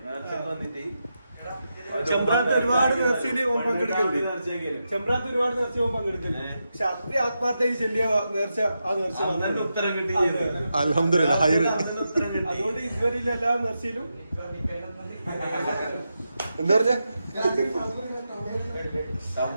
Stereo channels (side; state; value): both; inverted; correlation -0.87